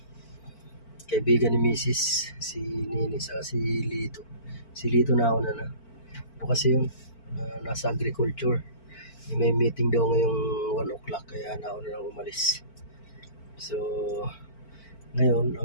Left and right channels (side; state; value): right; late; 4.5 ms